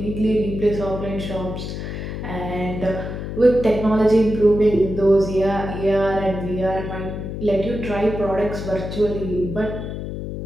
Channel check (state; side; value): noise; left; hum, 6 dB below the sound